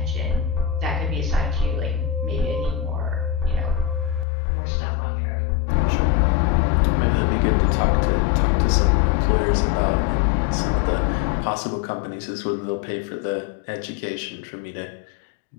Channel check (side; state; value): right; drops out; at 4.2 s